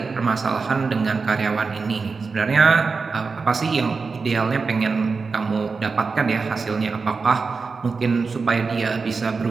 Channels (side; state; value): left; quieter; 4.6 dB